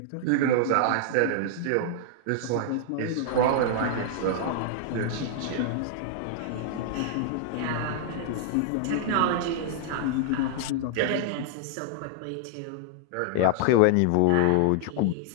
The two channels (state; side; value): different; both; correlation -0.01